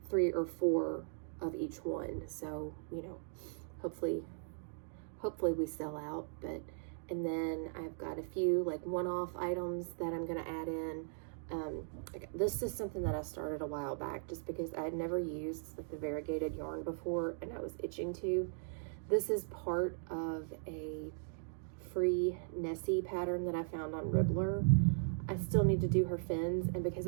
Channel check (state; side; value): silent; left; digital silence